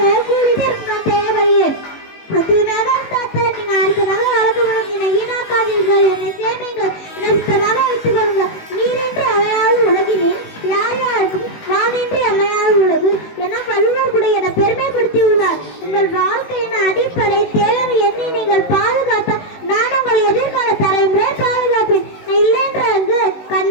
தேவையே அதிகமாக நீங்க அடுத்ததாக வளர்க்கப்படும். என்னை வீணாக்காதீர்கள், என்னை சேமிங்கள், என்னை சுத்தமாக வைத்துக் கொள்ளுங்கள். நீரின்றி அவையால் உலகினேன் யார் யாருக்கும் நான் இன்றி அமையாத உலகு என வள்ளுவர் கூட என பெருமைப்படுத்தி உள்ளார். உங்கள் வாழ்க்கையின் அடிப்படை தேவை எண்ணி நீங்கள் பாதுகாத்த நான் உங்கள் எதிர்கால தலைமுறை பாதுகாப்பேன். இல்லைன்ற அங்கு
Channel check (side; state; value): right; late; 19 ms